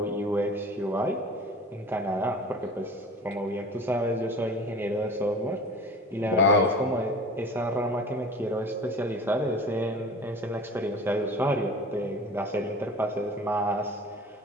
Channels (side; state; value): both; normal; correlation 0.40